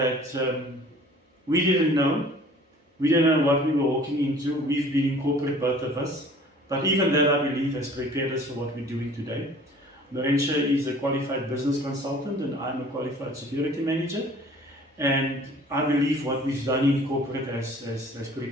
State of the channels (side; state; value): both; normal; correlation 0.50